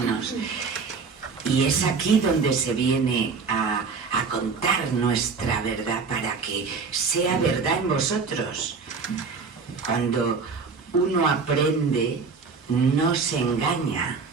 Y es aquí donde se viene a contar nuestra verdad para que sea verdad en vosotros. Cuando uno aprende, no se engaña,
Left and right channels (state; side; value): quieter; left; 5.0 dB